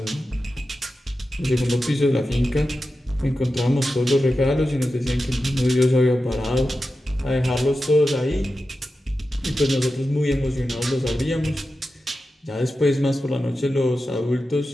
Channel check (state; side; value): normal; both; correlation 0.92